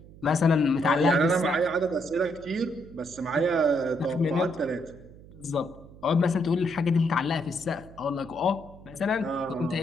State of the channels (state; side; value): noise; right; hum, 20 dB below the sound